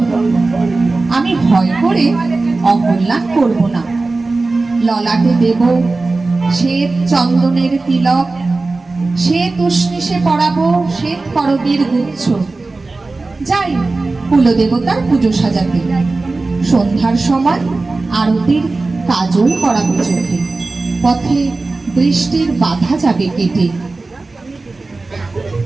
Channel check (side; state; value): left; quieter; 3.5 dB